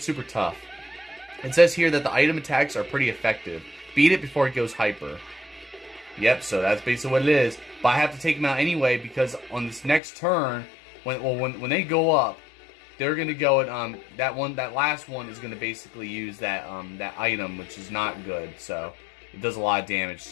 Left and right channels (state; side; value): drops out; right; at 10.0 s